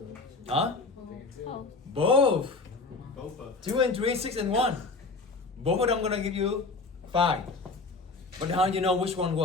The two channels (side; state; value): right; quieter; 3.8 dB